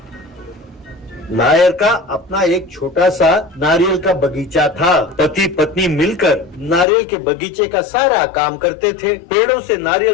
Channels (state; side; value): drops out; right; at 6.9 s